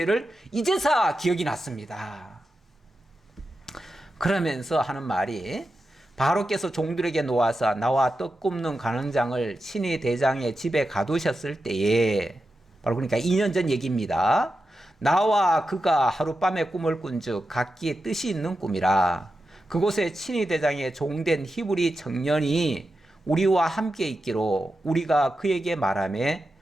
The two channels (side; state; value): both; normal; correlation 0.90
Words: 이제서 기억이 났습니다. 그러면서 하는 말이 바로께서 종들에게 놓아서 나와 떡 굽는 간원장을 친히 대장의 집에 가두셨을 때에 바로 그러니까 2년 전 얘기입니다. 나와 그가 하룻밤에 꿈을 꾼즉 각기 뜻이 있는 꿈이라. 그곳에 친히 대장의 종된 히브리 청년이 우리와 함께 있기로 우리가 그에게 말하매